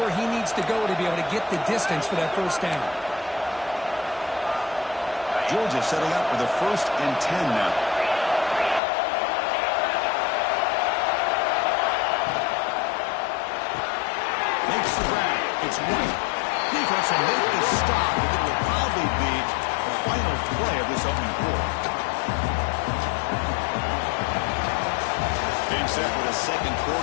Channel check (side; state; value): right; drops out; at 8.8 s